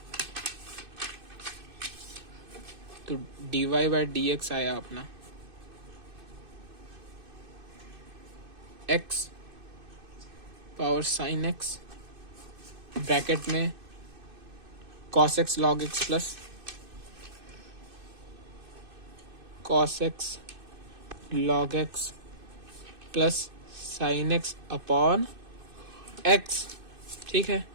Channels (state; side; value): late; left; 2.6 ms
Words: तो dy बाई dx आया अपना x power sine x bracket में cos x log x plus cos x log x plus sine x upon x, ठीक है,